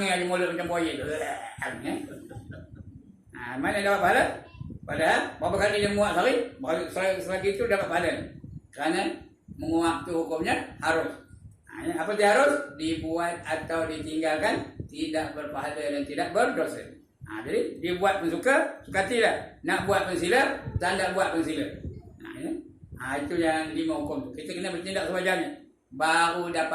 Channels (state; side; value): identical; both; correlation 1.00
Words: aja mulut macam buaya tu. Mana dapat pahala? Padahal berapa kali dia menguap sehari? Selagi itu dapat pahala. Kerana menguap tu hukumnya harus. Apa dia harus? Dibuat atau ditinggalkan tidak berpahala dan tidak berdosa. Jadi dibuat pun suka hatilah. Nak buat pun sila, tak nak buat pun sila. Itu yang 5 hukum tu. Kita kena bertindak sewajarnya. Baru